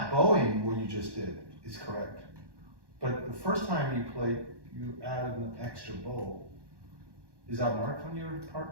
bowing, what you just did, is correct. But the first time you played, you added an extra bow. Is that marked on your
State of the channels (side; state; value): left; late; 1.1 ms